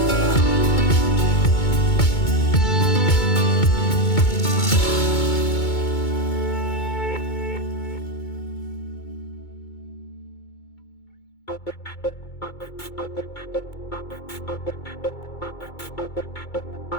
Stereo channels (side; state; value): right; late; 2.2 ms